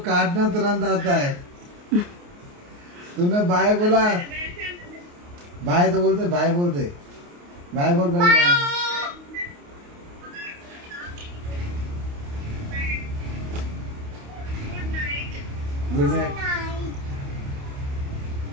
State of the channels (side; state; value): left; late; 28 ms